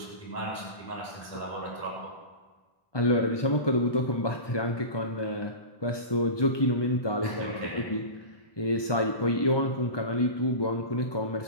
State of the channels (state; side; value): late; right; 1.2 ms